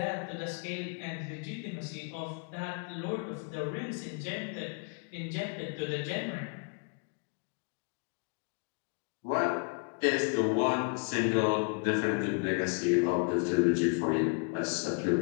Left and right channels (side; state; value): right; quieter; 39.2 dB